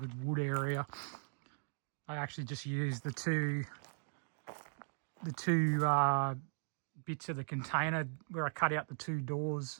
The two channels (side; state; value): left; silent; digital silence